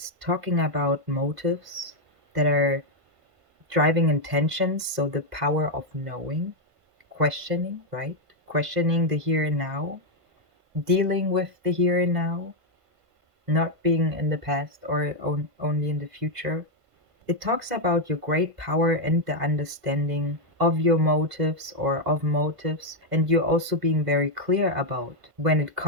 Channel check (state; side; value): late; left; 1.5 ms